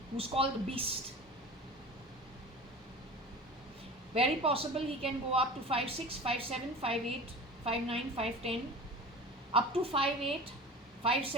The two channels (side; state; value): both; normal; correlation 0.36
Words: who's called the Beast. Very possible he can go up to 5'6", 5'7", 5'8", 5'9", 5'10", up to 5'8",